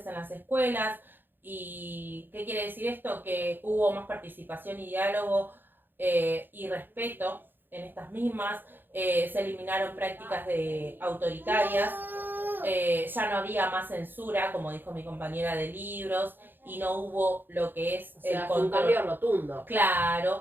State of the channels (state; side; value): late; left; 0.095 ms